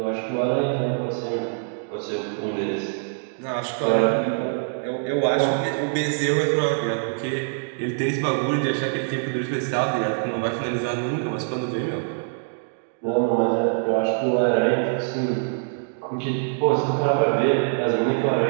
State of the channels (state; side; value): silent; left; digital silence